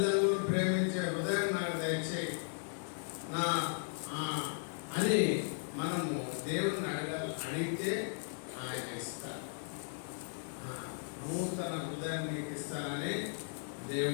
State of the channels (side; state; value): right; silent; digital silence